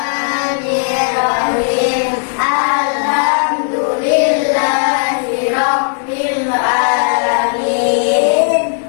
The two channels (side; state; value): right; silent; digital silence